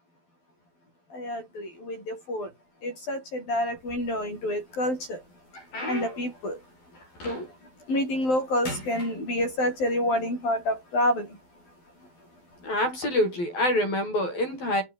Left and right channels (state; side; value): late; right; 12 ms